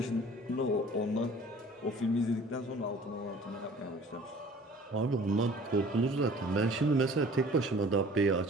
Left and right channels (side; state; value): both; normal; correlation 0.48